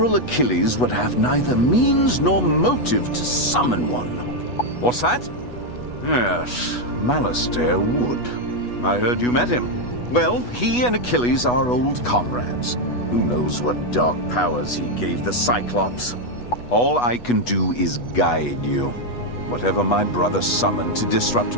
Achilles would have neither means nor motive to summon one. What's that? Yes, Malastair would. I heard you met him. Well, he and Achilles are old comrades. Who knows what dark powers he gave the Cyclops? All I can do is guide you. Whatever my brother summoned to disrupt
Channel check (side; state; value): right; late; 8.2 ms